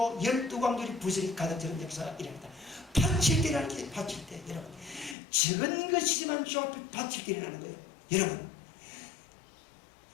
12광들이 부스리 가득 차는 역사가 일어납니다. 바칠 때라는 게 바칠 때 여러분 적은 것이지만 주 앞에 바칠 때 일어나는 거예요. 여러분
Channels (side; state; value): right; drops out; at 5.2 s